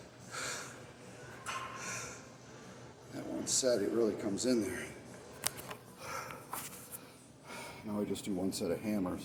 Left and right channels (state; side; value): identical; both; correlation 1.00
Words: that one set, it really comes in there. Now I just do one set of